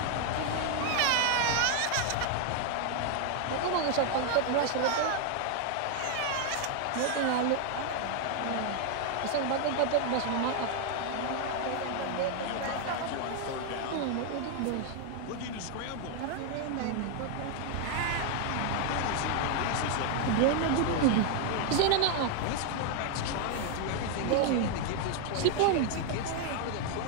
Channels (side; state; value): both; different; correlation 0.00